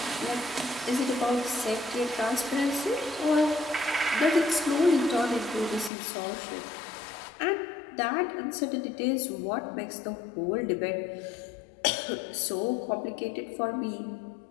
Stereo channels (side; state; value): right; drops out; at 5.9 s